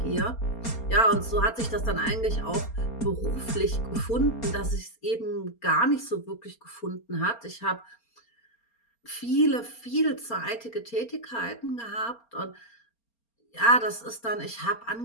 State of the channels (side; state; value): right; late; 4.3 ms